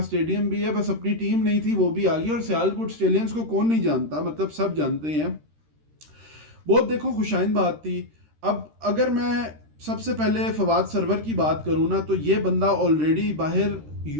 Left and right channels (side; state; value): left; late; 13 ms